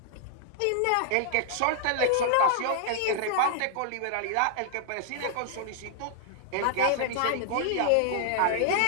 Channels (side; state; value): both; different; correlation -0.01